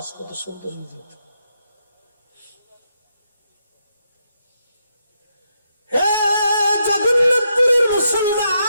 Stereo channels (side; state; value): both; inverted; correlation -0.81